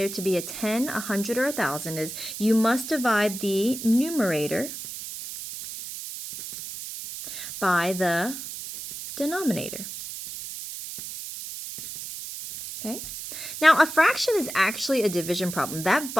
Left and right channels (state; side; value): noise; right; hiss, 9 dB below the sound